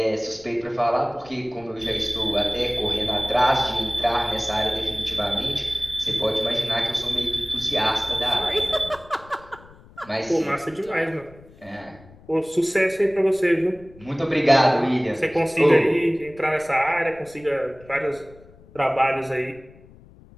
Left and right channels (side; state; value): left; noise; rumble, 23 dB below the sound